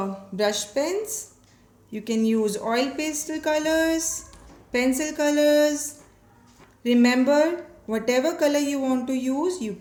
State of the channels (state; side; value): identical; both; correlation 1.00